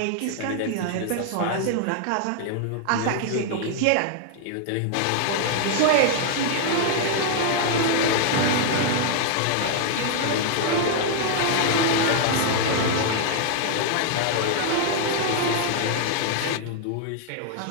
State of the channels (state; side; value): different; both; correlation 0.00